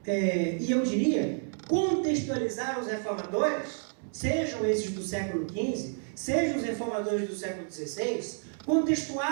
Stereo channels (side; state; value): left; silent; 58 dB below the other